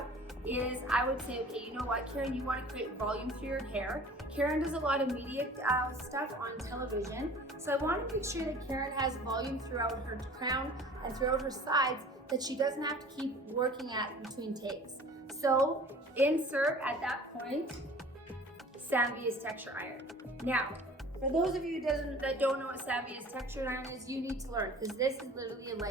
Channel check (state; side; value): normal; both; correlation 0.45